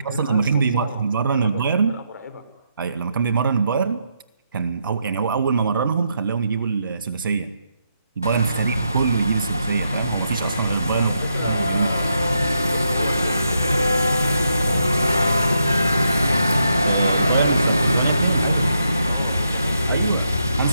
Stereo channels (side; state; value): both; inverted; correlation -0.80